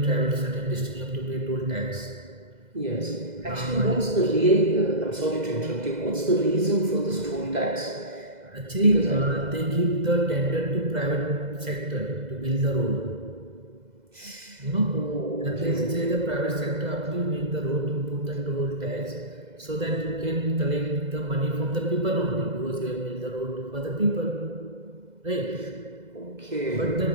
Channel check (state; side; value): late; left; 2.0 ms